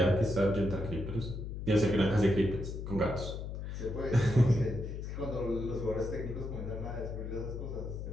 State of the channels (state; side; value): noise; left; hum, 6 dB below the sound